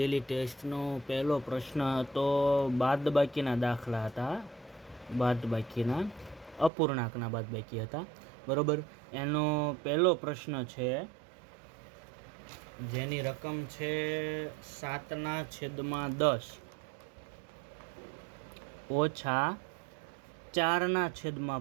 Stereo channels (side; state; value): left; drops out; at 6.7 s